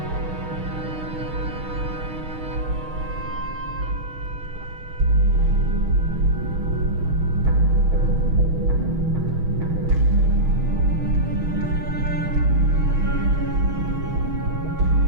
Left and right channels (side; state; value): left; late; 6.3 ms